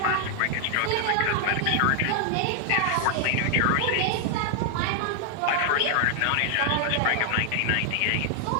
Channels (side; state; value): both; different; correlation 0.00